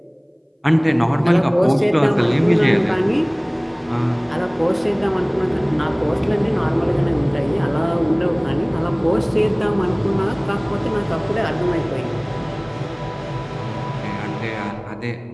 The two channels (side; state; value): both; identical; correlation 1.00